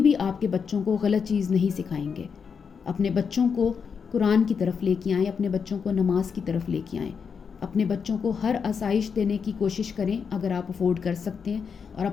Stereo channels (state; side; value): quieter; right; 6.2 dB